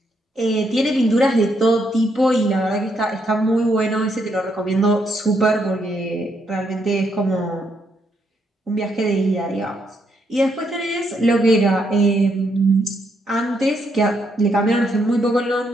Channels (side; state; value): both; normal; correlation 0.76